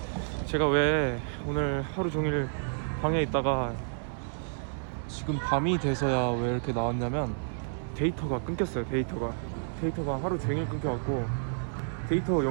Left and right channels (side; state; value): left; silent; 58 dB below the other